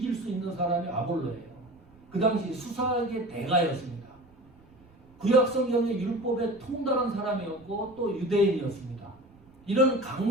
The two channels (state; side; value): noise; right; rumble, 27 dB below the sound